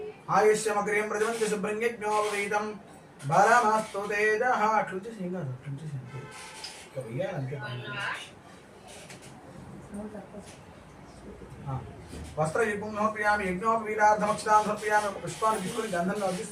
ఆయుష్యమగ్రియం ప్రజవంతి శుభ్రం యజ్ఞోపవీదం బలమస్తు తేజః అట్లుంచి సింగారు అట్లుంచి వస్త్రయుగ్మం సమర్పయామి యజ్ఞోపవీదార్థమక్షతాం సమర్పయామి పుష్పాన్ని తీసుకుని గంధంలో వచ్చి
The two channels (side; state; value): both; identical; correlation 1.00